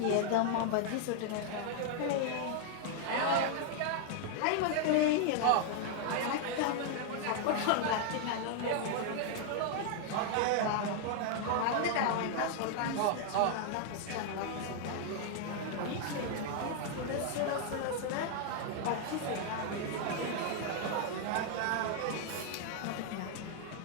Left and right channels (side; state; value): both; different; correlation 0.00